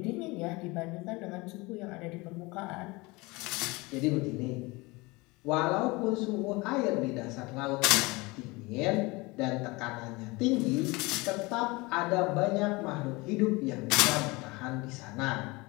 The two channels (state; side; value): quieter; right; 24.0 dB